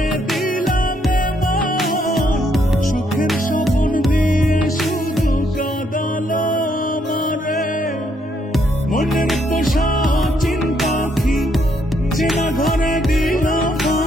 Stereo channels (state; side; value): normal; both; correlation 0.73